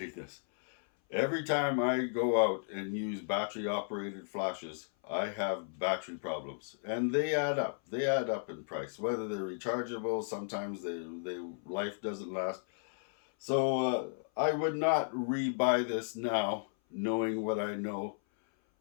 this. Every time I go out and use battery operated flashes, I have battery problems, and they add up. They add up in price. Whether they're rechargeable, sometimes they life doesn't last. So I would not rebuy this now, knowing what I know.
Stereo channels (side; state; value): right; silent; 55 dB below the other